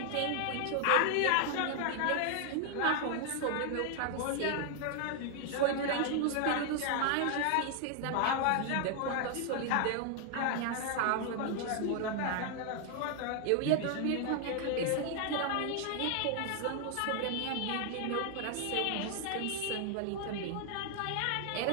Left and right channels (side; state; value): both; different; correlation 0.00